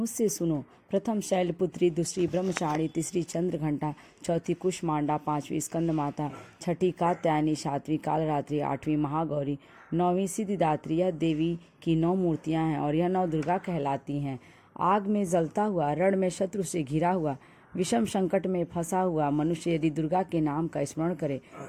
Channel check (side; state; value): both; identical; correlation 1.00